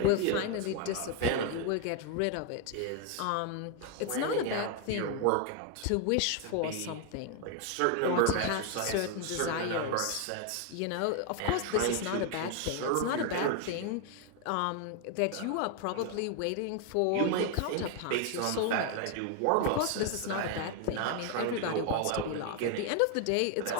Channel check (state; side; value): different; both; correlation 0.00